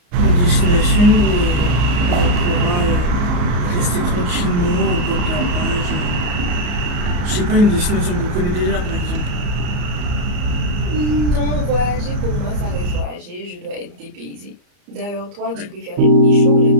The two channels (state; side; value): late; left; 34 ms